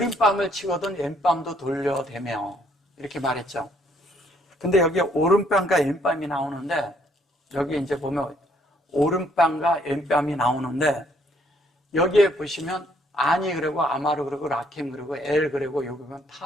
치거든 왼뺨도 돌려대며 이렇게 말했죠. 근데 여기 오른뺨과 왼뺨이 나오는데 여기 이제 보면 오른뺨과 왼뺨이 나오는데 여기에 보시면 아니 그리고 아마르 그리고 라켐 그리고 엘 그리고 여기 보면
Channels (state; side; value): normal; both; correlation 0.67